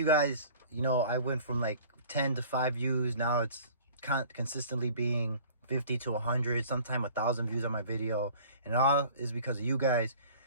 guys. You know, I went from like 10 to 5 views. Now it's consistently being 50 to 100, sometimes 1,000 views on my video. And all is because of you guys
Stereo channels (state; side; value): inverted; both; correlation -0.47